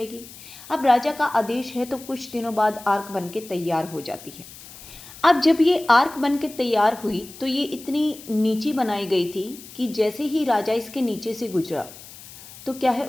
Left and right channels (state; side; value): noise; left; hiss, 17 dB below the sound